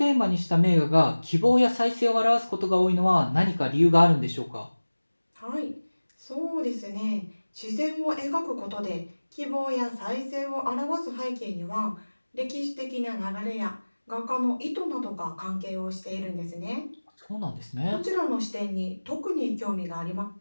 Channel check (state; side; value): inverted; both; correlation -1.00